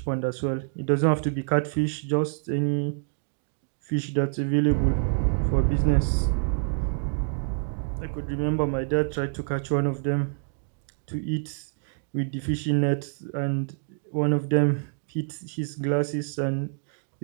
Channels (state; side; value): silent; left; digital silence